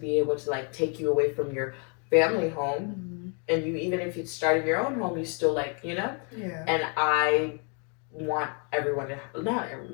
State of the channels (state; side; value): quieter; right; 37.7 dB